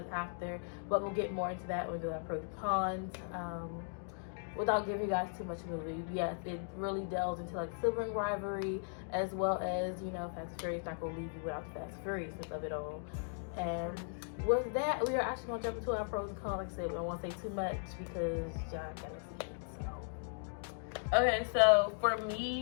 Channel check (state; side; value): silent; right; digital silence